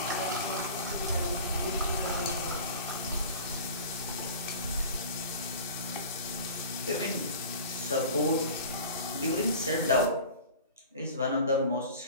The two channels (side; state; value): both; inverted; correlation -0.39